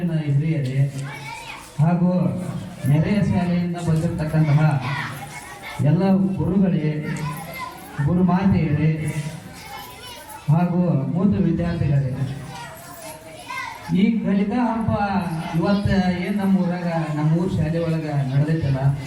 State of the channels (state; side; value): identical; both; correlation 1.00